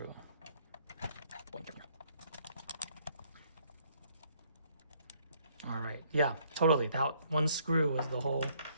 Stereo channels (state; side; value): inverted; both; correlation -0.66